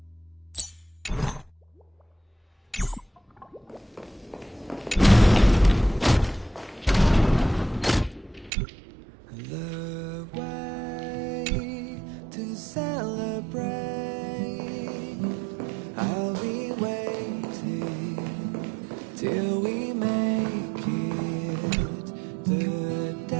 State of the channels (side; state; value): left; drops out; at 8.5 s